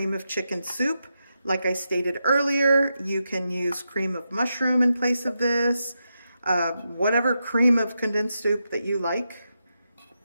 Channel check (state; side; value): inverted; both; correlation -0.86